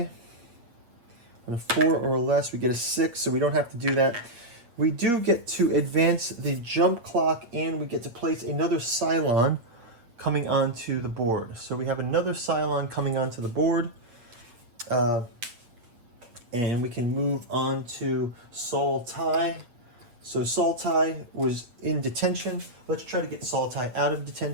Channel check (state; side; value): late; left; 8.5 ms